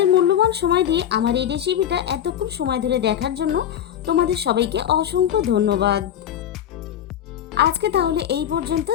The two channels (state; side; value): quieter; right; 10.3 dB